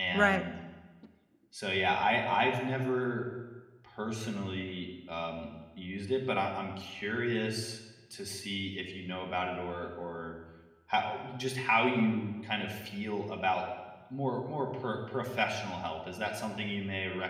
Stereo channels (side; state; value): both; identical; correlation 1.00